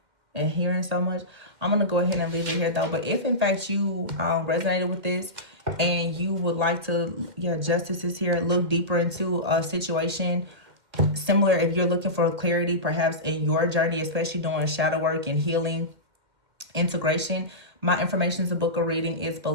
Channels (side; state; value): left; late; 1.8 ms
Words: and hearing so much. I'm going to go ahead and leave it here, though. But if, in fact, you resonated with this and you would like to, justice is here, look deeper into a situation similar, if you're looking for clarity, perhaps in your journey, especially doing shadow work and healing, integration, my information is a book of reading is